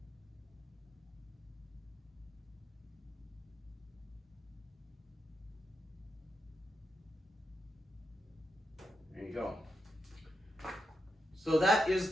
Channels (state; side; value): normal; both; correlation 0.85